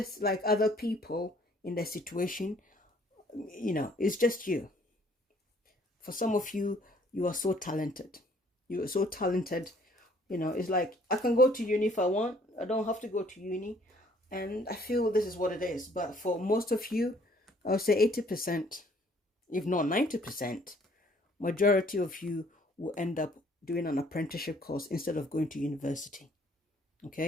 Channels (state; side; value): normal; both; correlation 0.60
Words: like other people in their situation. It's just you. For some of you, you are so talented. You are so talented. It's like I can go to uni if I want. I don't have to go to uni. And I feel this is what it is. But for most of you, I would say 80%, if not 90%, majority of you will end up doing an apprenticeship course instead of going to university.